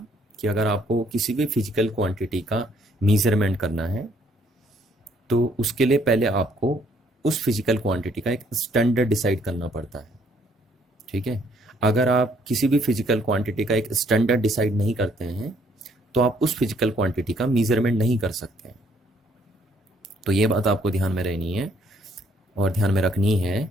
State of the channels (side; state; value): both; normal; correlation 0.66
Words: कि अगर आपको किसी भी फिजिकल क्वांटिटी का मीज़रमेंट करना है तो उसके लिए पहले आपको उस फिजिकल क्वांटिटी का एक स्टैंडर्ड डिसाइड करना पड़ता है। ठीक है। अगर आप किसी भी फिजिकल क्वांटिटी का एक स्टैंडर्ड डिसाइड नहीं करते हैं तो आप उस फिजिकल क्वांटिटी का मीज़रमेंट नहीं कर सकते हैं। तो ये बात आपको ध्यान में रहनी है और ध्यान में रखनी